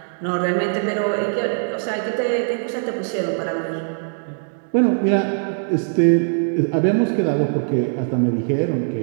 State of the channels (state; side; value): silent; left; 64 dB below the other